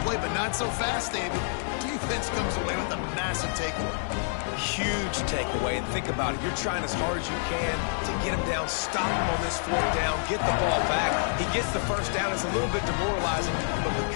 play, but not so fast, David. Defense comes away with a massive takeaway. Huge takeaway, and think about it. You're trying as hard as you can to get him down, stop him on this fourth down, get the ball back. He gets the first down. It's a little bit demoralizing, but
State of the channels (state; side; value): silent; right; digital silence